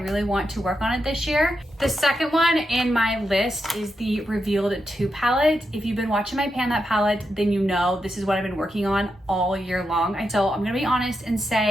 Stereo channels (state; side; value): normal; both; correlation 0.85